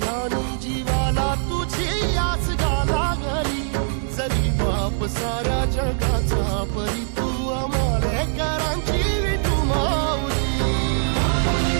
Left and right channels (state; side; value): silent; left; digital silence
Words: ध्यानी जीवाला तुझी आस गाला गली जरी बाप साऱ्या जगाचा परी तू आमालेकरांची विठू माऊली